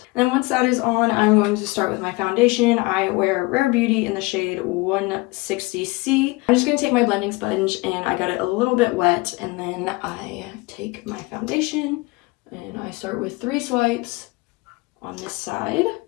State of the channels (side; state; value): right; quieter; 23.7 dB